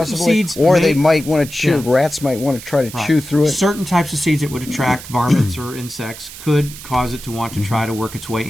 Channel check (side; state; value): right; noise; hiss, 14 dB below the sound